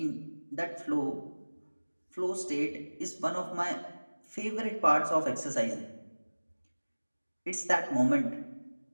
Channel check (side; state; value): both; inverted; correlation -1.00